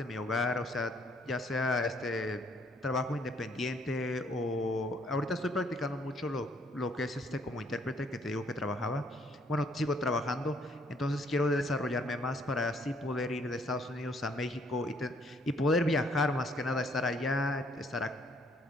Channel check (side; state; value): both; normal; correlation 0.66